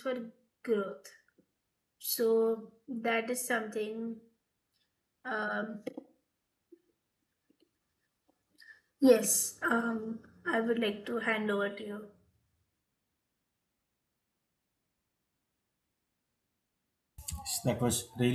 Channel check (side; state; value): both; identical; correlation 1.00